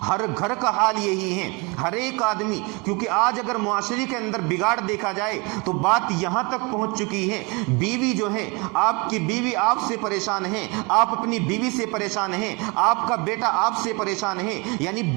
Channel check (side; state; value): left; quieter; 28.8 dB